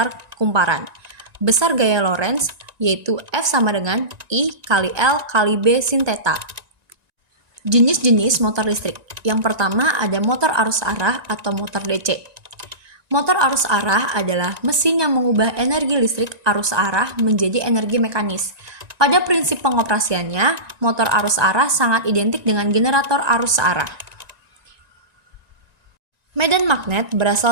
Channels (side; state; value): left; late; 1.9 ms